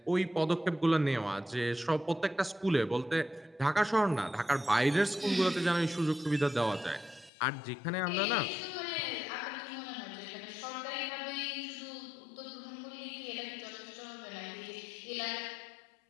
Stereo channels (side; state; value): right; drops out; at 7.3 s